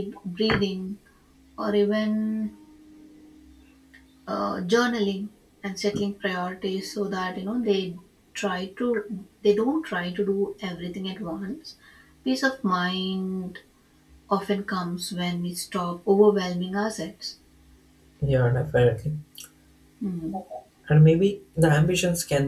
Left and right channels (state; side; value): identical; both; correlation 1.00